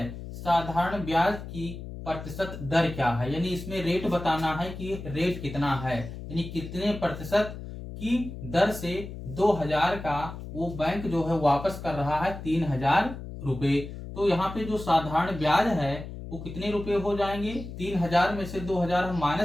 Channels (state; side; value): noise; left; hum, 10 dB below the sound